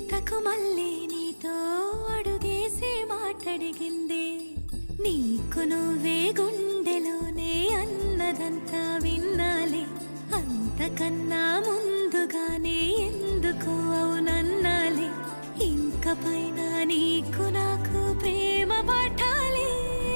మళ్ళీ నీతో అడుగేసి మాటడిగిందే నీకు నువ్వే గుండెలోనే అన్నదంతా విన్నాలే అంతకన్నా ముందుగానే ఎందుకు అవునన్నాలే ఇంక పైన నీకు నాకు ప్రేమ పాఠాలే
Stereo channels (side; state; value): both; inverted; correlation -1.00